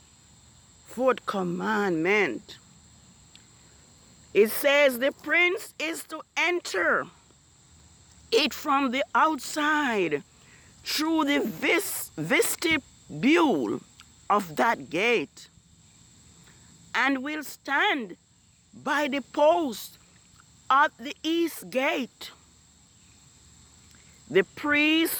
fourth commandment. It says the prince is to enter it from the outside through the vestibule of that gate, and will stand by the post at the east gate. The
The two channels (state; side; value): identical; both; correlation 1.00